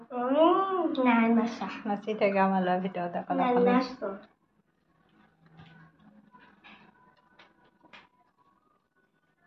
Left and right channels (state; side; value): identical; both; correlation 1.00